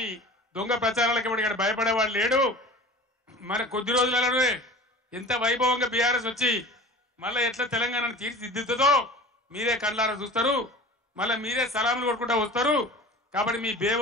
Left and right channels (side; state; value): both; normal; correlation 0.39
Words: దొంగ ప్రచారాలకు ఇప్పుడు ఇక్కడ భయపడేవాడు లేడు. మన కొద్ది రోజులలోనే ఎంత వైభవంగా బీఆర్ఎస్ వచ్చి మళ్ళీ ఎట్లా తెలంగాణను తీర్చిదిద్దుతుందో మీరే కళ్ళారా చూస్తారు, మళ్ళీ మీరే సలాములు కొట్టుకుంటూ వస్తారు. కాబట్టి మీ